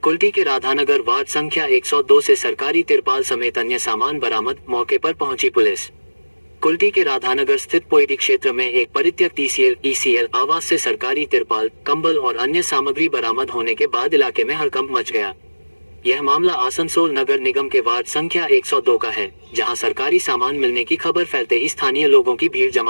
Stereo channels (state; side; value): inverted; both; correlation -1.00